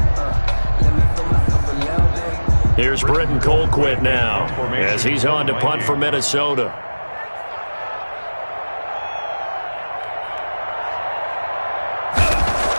Here's Britton Colquitt now as he's on to punt for Minnesota.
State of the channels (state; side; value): inverted; both; correlation -1.00